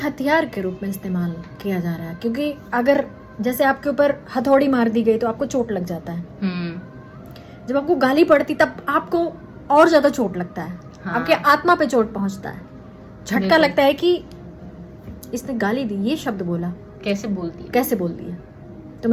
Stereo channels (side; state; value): both; identical; correlation 1.00